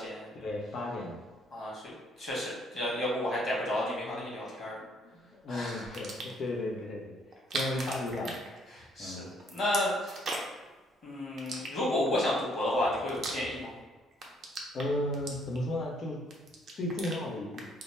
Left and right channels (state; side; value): normal; both; correlation 0.66